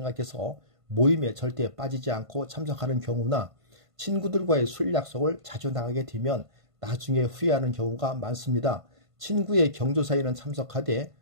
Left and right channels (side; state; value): left; late; 1.5 ms